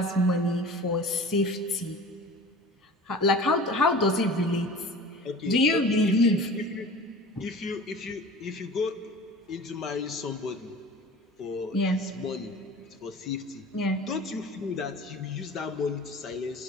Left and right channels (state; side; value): normal; both; correlation 0.40